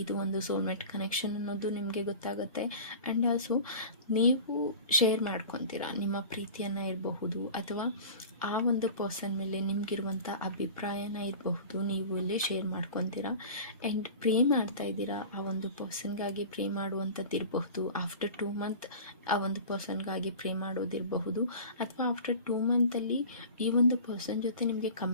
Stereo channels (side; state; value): both; inverted; correlation -0.37